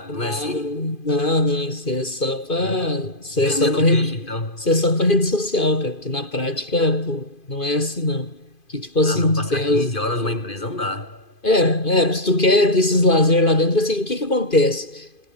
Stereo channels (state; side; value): late; right; 2.5 ms